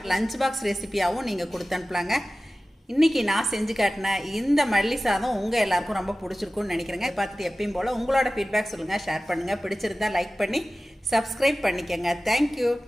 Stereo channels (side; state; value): both; normal; correlation 0.96